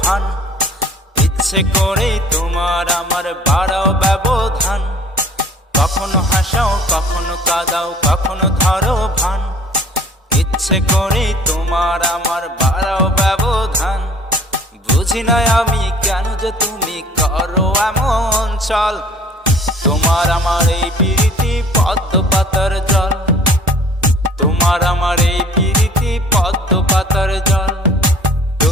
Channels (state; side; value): normal; both; correlation 0.51